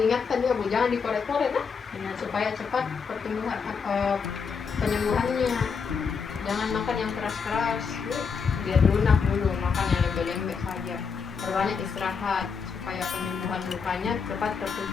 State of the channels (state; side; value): quieter; right; 5.8 dB